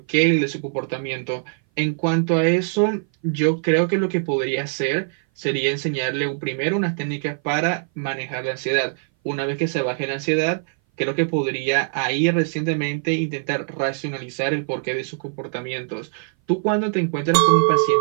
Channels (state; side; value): silent; left; 58 dB below the other